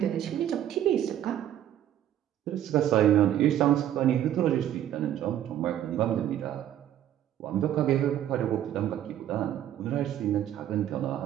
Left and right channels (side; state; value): left; quieter; 11.4 dB